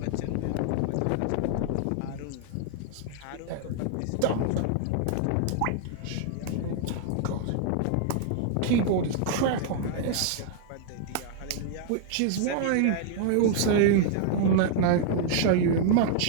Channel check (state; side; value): different; both; correlation 0.00